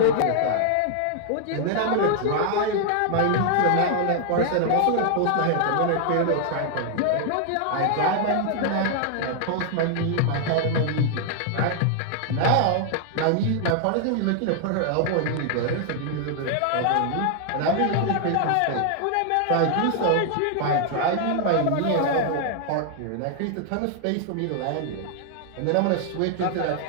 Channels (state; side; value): different; both; correlation 0.00